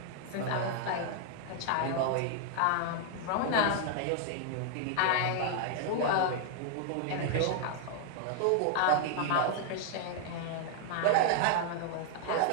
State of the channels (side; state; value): both; different; correlation 0.00